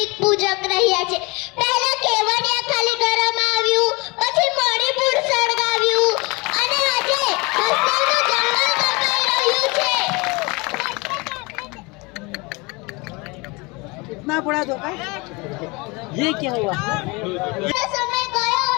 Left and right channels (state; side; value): quieter; right; 26.5 dB